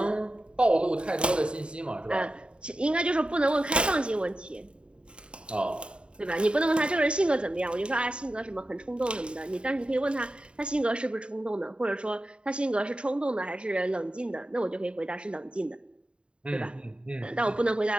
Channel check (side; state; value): left; late; 0.053 ms